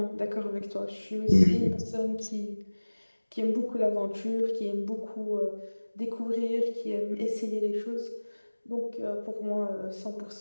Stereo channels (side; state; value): both; inverted; correlation -1.00